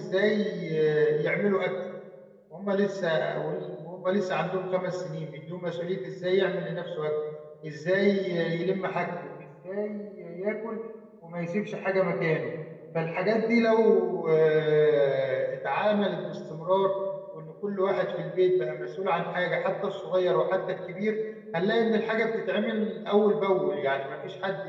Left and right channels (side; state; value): both; identical; correlation 1.00